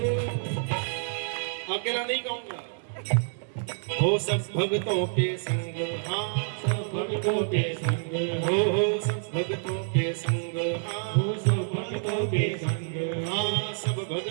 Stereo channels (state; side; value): silent; left; digital silence